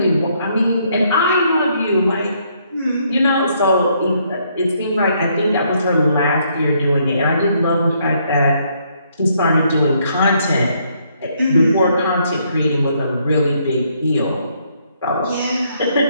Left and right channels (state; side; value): inverted; both; correlation -0.71